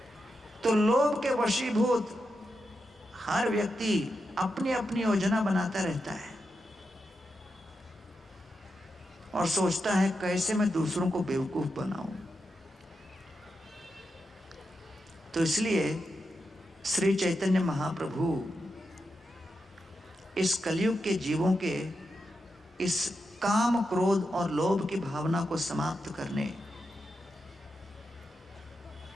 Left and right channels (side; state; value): both; normal; correlation 0.87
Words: तो लोभ के वशीभूत हर व्यक्ति अपनी अपनी योजना बनाता रहता है और सोचता है कैसे मैं दूसरों को बेवकूफ बनाऊं। तो इसलिए श्री चैतन्य महाप्रभु इस कलयुग के जीवों के इस काम, क्रोध और लोभ की भावना को समाप्त करने